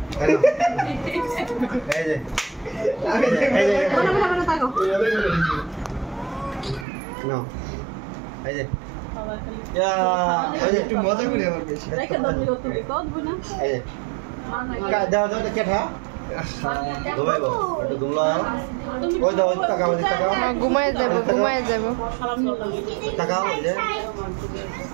এই যে মনে থাকো না এই যে একটু মজা করি আমার বেশি রেখে দাও তুমি কত বুনা এই যে দাও কে থা ঘুমাই বল একটু ঘুমলা ওই দাও টাকা ঘুমায় যাব টাকা ওই যে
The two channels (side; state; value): left; drops out; at 6.9 s